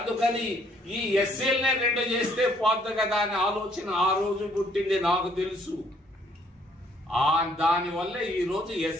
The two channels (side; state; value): both; normal; correlation 0.65